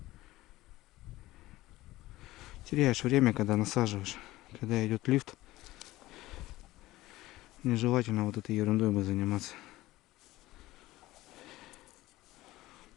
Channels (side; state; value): right; quieter; 17.5 dB